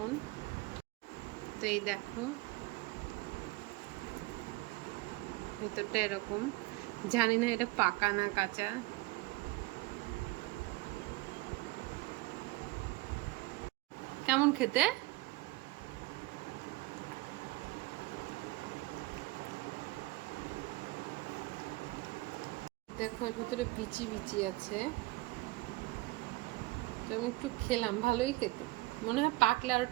তো এই দেখো ভেতরটা এরকম, জানি না এটা পাকা না কাঁচা। কেমন খেতে? দেখো এর ভিতরে বিচি বিচি আছে, তো আমি একটু খেলাম, ভালোই খেতে। মনে হয় পাকলে আরো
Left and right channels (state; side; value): quieter; left; 20.8 dB